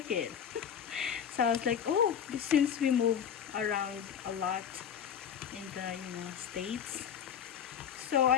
it. So I was like, oh, since we move around a lot in the states, so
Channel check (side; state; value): right; quieter; 8.3 dB